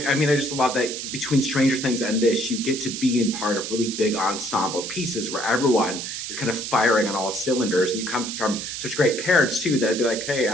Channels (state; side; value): noise; right; hiss, 6 dB below the sound